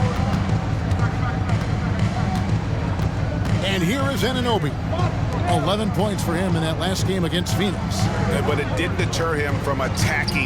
And here is Anunoby. 11 points for him in that last game against Phoenix. But it didn't deter him from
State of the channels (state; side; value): identical; both; correlation 1.00